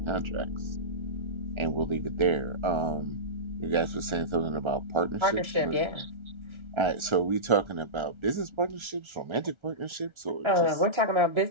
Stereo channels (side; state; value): left; late; 1.3 ms